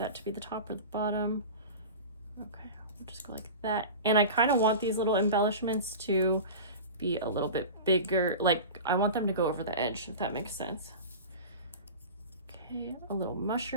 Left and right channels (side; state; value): both; inverted; correlation -0.32